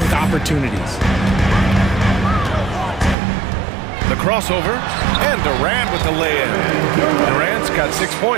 opportunities. The crossover, and Durant with the lay-in. Durant's got 6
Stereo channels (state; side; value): drops out; left; at 3.2 s